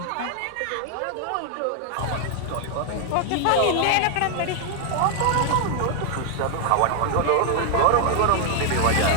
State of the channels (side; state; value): both; different; correlation 0.00